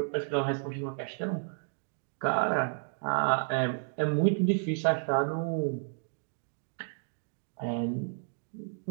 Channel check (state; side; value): silent; left; digital silence